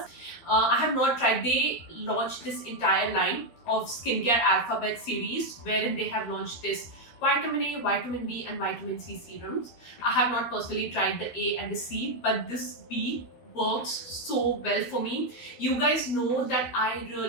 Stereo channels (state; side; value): late; right; 13 ms